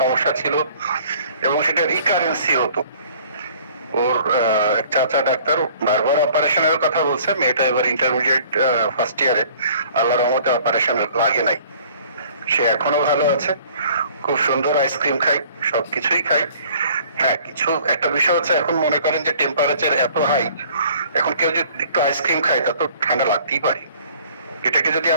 ছিল, এবং সেটা রিকারেন্সি হতো। ওর এক চাচা ডাক্তার বারবার অপারেশনের কথা বলছে, মেয়েটা এবার ইন্টারমিডিয়েট ফার্স্ট ইয়ারে, আল্লাহর রহমতে অপারেশন লাগে নাই। সে এখনো ভালো আছে, খুব সুন্দর আইসক্রিম খাই, সবকিছুই খাই। হ্যাঁ, কিছু একটা বিষয় হচ্ছে, এখন মনে করেন যে টেম্পারেচার এত হাই, এখন কেউ যদি একটু আইসক্রিম খায় তা তো ঠান্ডা লাগতেই পারে। এটাকে যদি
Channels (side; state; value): both; inverted; correlation -0.54